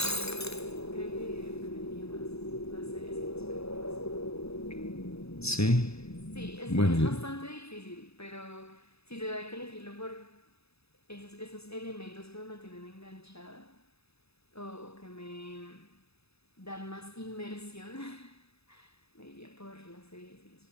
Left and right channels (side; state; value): right; late; 0.79 ms